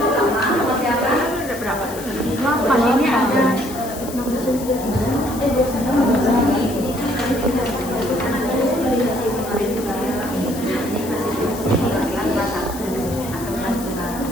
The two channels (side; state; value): left; noise; hiss, 13 dB below the sound